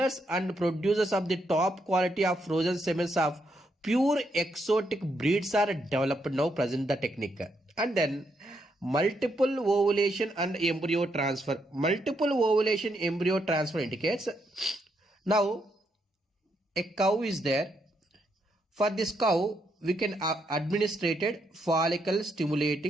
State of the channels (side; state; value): both; normal; correlation 0.78